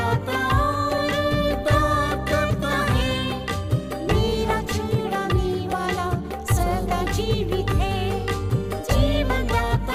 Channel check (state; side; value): identical; both; correlation 1.00